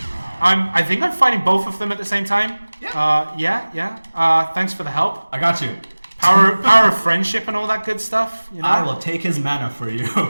I think I'm fighting both of them at the same time. Yeah. Thanks for the help. I got you. Power of friendship and all that good stuff. I will take his mana for you.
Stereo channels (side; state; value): both; inverted; correlation -1.00